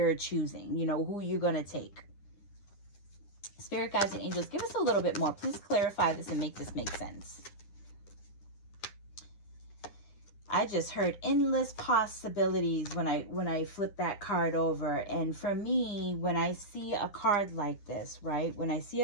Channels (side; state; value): right; late; 9.8 ms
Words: choosing, who you're going to take. Spirit guides and angels, give us a little bit more. Please clarify this and make this make sense. I just heard endless possibilities when I flip that card over. And for me, when I see a card like this, right? When I see